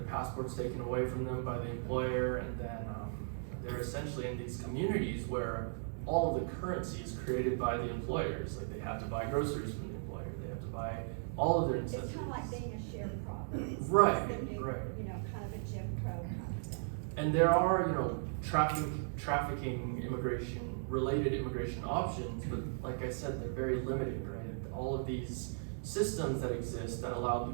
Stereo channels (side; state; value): left; silent; digital silence